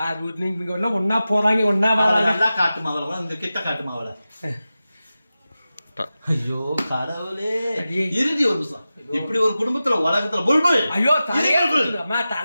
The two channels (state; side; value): inverted; both; correlation -0.94